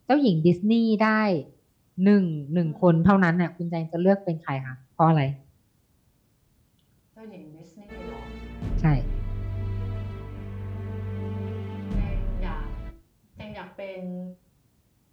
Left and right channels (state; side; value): identical; both; correlation 1.00